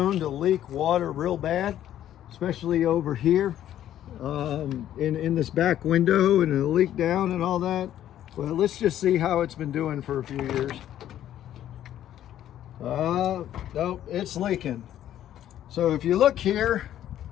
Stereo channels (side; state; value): right; quieter; 11.7 dB